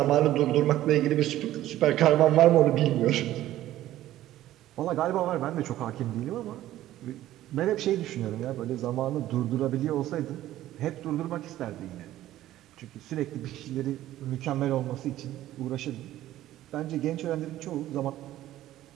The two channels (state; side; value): quieter; left; 14.1 dB